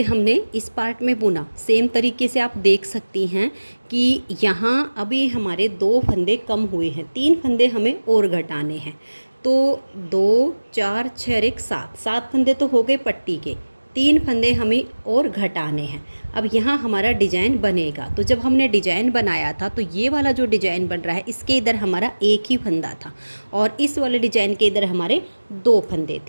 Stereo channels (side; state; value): both; inverted; correlation -1.00